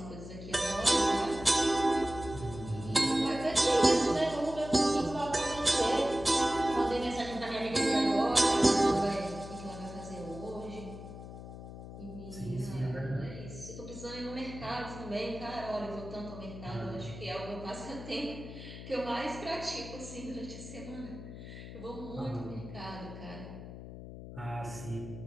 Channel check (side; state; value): left; noise; hum, 12 dB below the sound